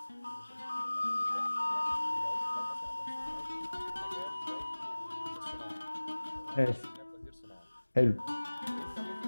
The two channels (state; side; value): inverted; both; correlation -1.00